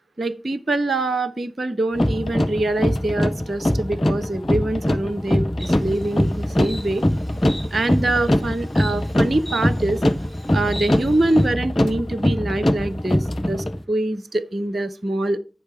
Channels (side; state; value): both; normal; correlation 0.94